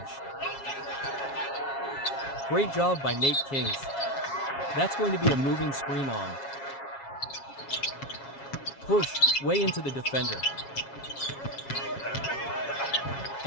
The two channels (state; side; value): late; right; 7.3 ms